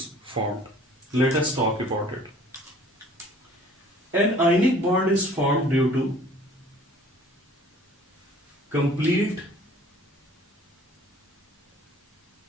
formed? Let us talk about it. An ionic bond is formed due to complete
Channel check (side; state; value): both; normal; correlation 0.51